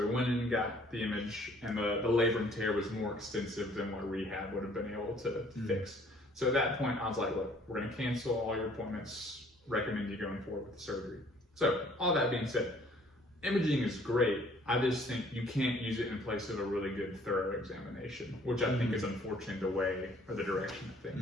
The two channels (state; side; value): normal; both; correlation 0.58